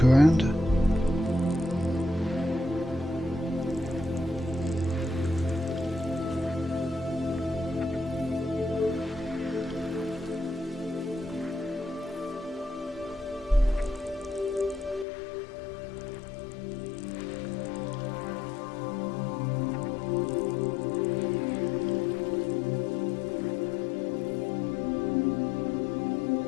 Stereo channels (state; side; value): drops out; right; at 15.1 s